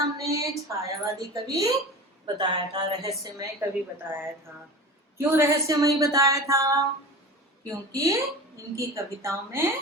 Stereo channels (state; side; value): normal; both; correlation 0.34